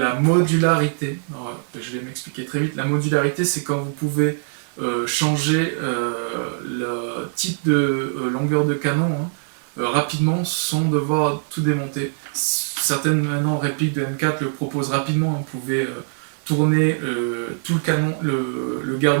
modularité. Alors, je vais m'expliquer très vite. La modularité, c'est quand vous pouvez changer le type de longueur de canon hein, rapidement sans devoir tout démonter. Certaines maintenant répliques de M4 le proposent rapidement. Vous pouvez tourner tout le canon, le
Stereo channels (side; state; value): left; silent; 64 dB below the other